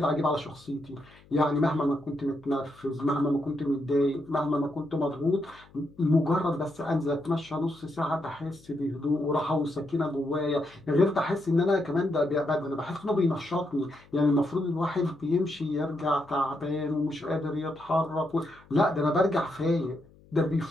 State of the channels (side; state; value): left; noise; hum, 26 dB below the sound